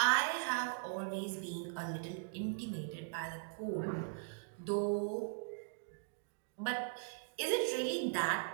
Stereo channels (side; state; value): left; silent; digital silence